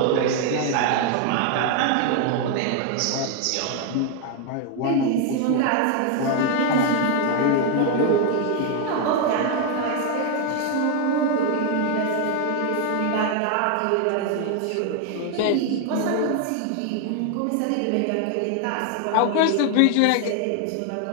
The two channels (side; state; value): both; different; correlation 0.01